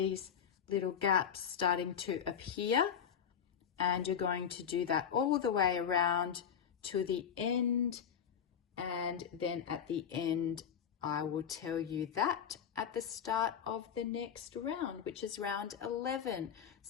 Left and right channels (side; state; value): right; quieter; 7.9 dB